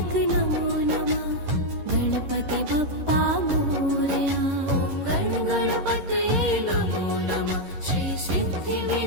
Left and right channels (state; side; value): late; left; 11 ms